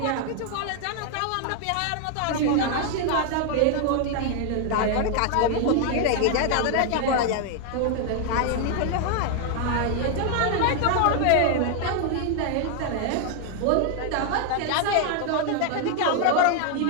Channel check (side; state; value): both; different; correlation 0.00